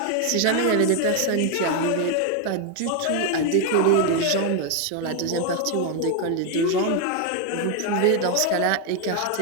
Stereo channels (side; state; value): both; different; correlation 0.01